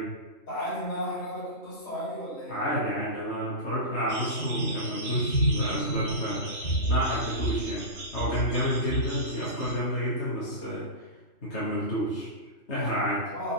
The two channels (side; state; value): right; late; 3.0 ms